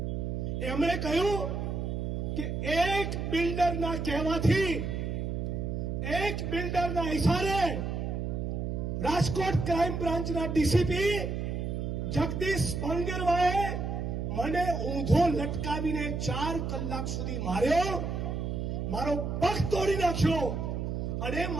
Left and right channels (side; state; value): right; noise; hum, 2 dB below the sound